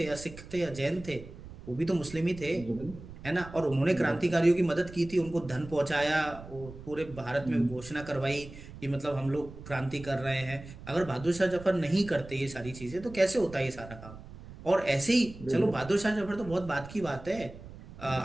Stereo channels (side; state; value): right; noise; rumble, 15 dB below the sound